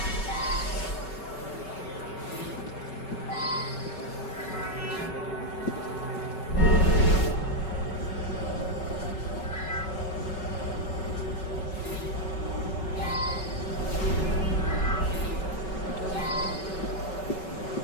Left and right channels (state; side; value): late; right; 5.4 ms